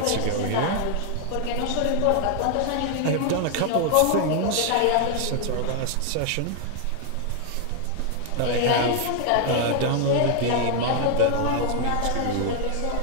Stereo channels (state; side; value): different; both; correlation 0.00